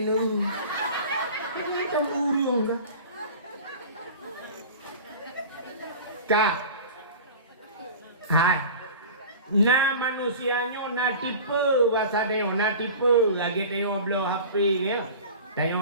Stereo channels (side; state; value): both; inverted; correlation -0.38